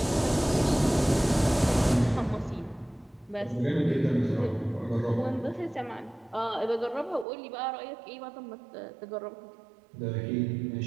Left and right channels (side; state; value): left; drops out; at 7.2 s